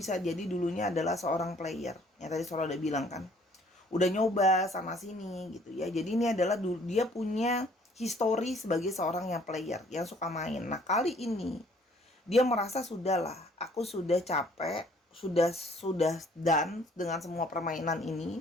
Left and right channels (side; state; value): both; normal; correlation 0.59